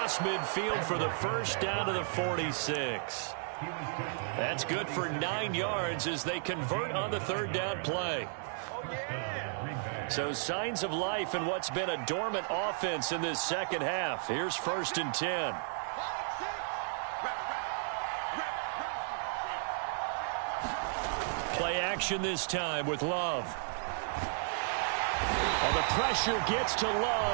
midfield for the first down to the 46. That's good for 9 yards as they convert on the third down play. So signs of life in what's been a dormant offense in this second half. Here's 1st and 10. Play action this time with Love. And the pressure gets to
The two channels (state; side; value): silent; left; 55 dB below the other